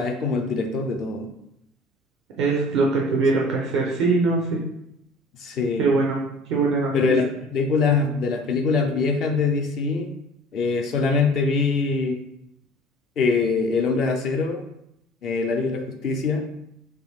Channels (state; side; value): normal; both; correlation 0.47